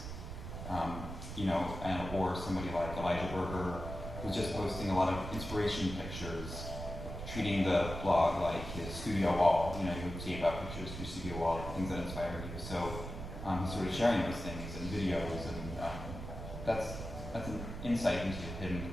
Or somebody like Elijah Berger, who's just posting a lot of inspiration pictures, treating the blog like his studio wall. You would see about pictures of your studio wall, things that inspire you. So he's sort of sharing those things and videos, and that's an insight into him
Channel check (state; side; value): noise; right; rumble, 8 dB below the sound